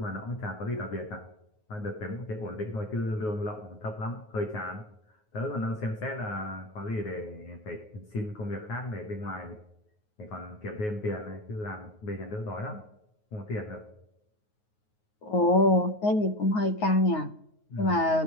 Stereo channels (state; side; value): late; right; 9.5 ms